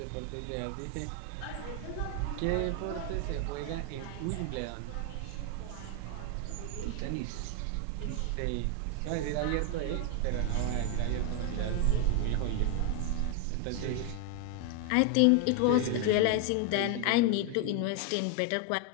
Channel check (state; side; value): different; both; correlation 0.00